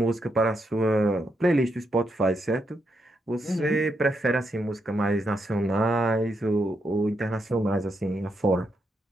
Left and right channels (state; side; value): normal; both; correlation 0.81